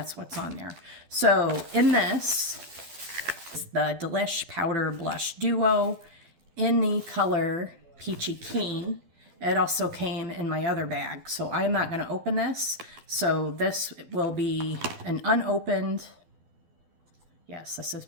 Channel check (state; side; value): late; left; 12 ms